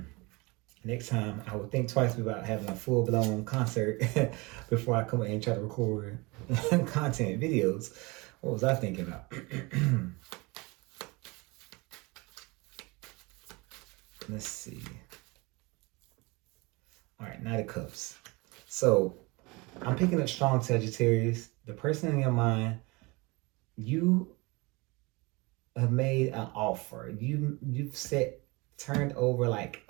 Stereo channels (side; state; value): left; quieter; 25.6 dB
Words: Next time, I would think twice about having a full-blown concert before I come in and try to record content videos. What was I thinking about? Let's see. All right, Knight of Cups. So I'm picking up strong Sagittarius. The person in your mind, you have made an offer. You've turned over like,